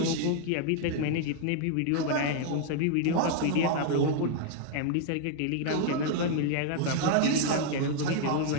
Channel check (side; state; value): both; different; correlation 0.00